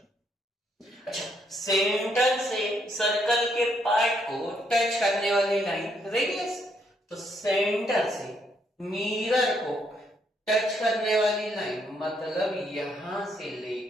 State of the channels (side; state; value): both; normal; correlation 0.73